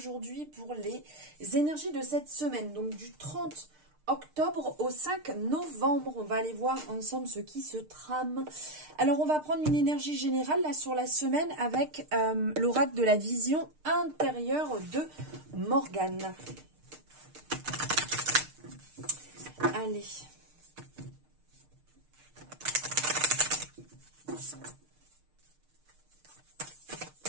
pour les énergies de cette semaine, donc du 30 octobre au 5 novembre. On va aller voir ensemble ce qui se trame. Alors, on va prendre une énergie générale là sur la semaine avec l'oracle de la vision intérieure de Morgane. Allez.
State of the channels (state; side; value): late; left; 6.6 ms